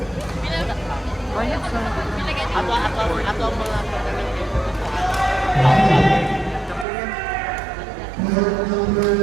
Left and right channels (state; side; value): drops out; left; at 6.9 s